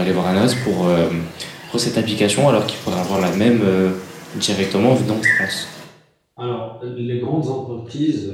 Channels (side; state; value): both; identical; correlation 1.00